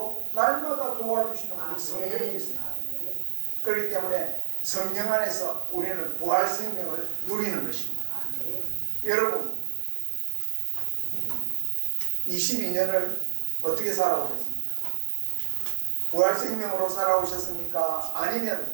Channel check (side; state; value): left; silent; digital silence